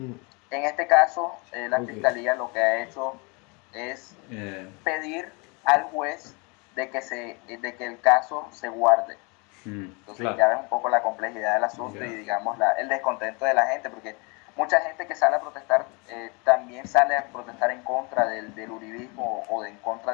En este caso, la Ok. fiscalía lo que ha hecho es Eh, pedir al juez de que el caso se guarde. Entonces Claro. ya ves un poco la complejidad del asunto y digamos el descontento de la gente, porque mucha gente que sale a protestar también sale a protestar en contra del uribismo o en contra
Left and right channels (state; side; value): quieter; right; 30.4 dB